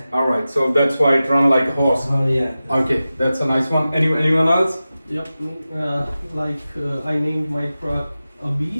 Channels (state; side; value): inverted; both; correlation -0.95